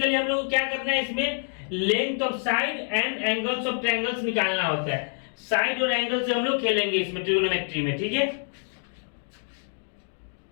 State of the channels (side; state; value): right; silent; digital silence